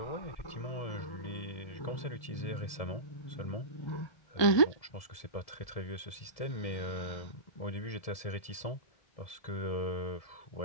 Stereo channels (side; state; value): right; late; 1.7 ms